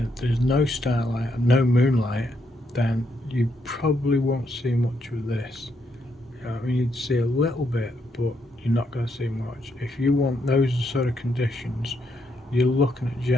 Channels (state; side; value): normal; both; correlation 0.77